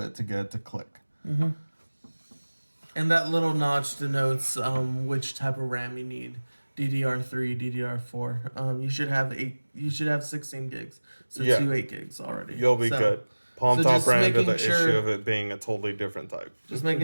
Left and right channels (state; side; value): inverted; both; correlation -1.00